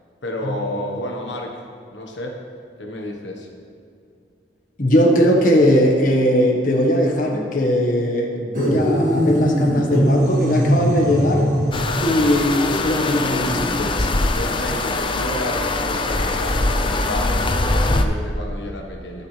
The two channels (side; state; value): both; normal; correlation 0.61